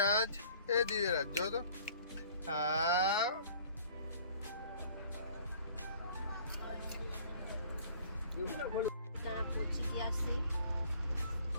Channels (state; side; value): inverted; both; correlation -0.53